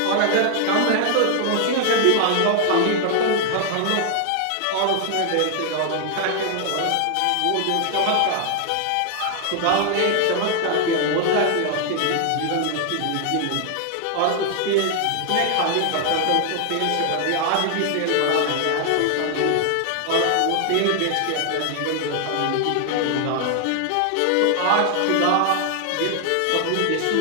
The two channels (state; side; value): different; both; correlation 0.00